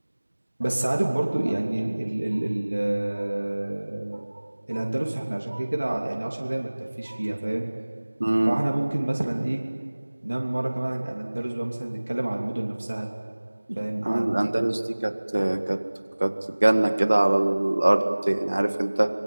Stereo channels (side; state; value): both; inverted; correlation -1.00